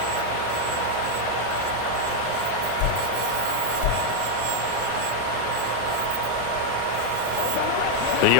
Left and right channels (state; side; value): different; both; correlation 0.01